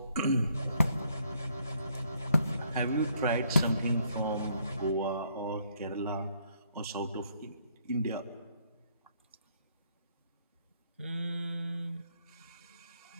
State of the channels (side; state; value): both; inverted; correlation -0.69